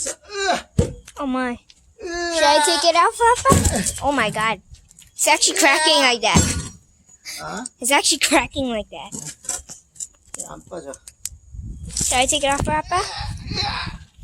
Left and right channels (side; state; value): both; identical; correlation 1.00